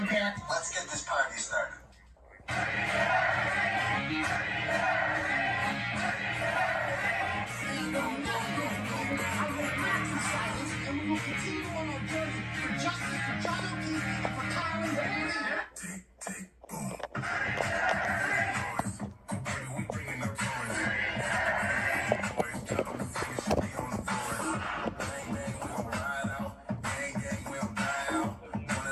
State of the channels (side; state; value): both; identical; correlation 1.00